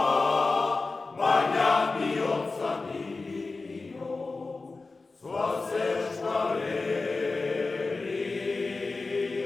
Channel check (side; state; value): right; quieter; 3.7 dB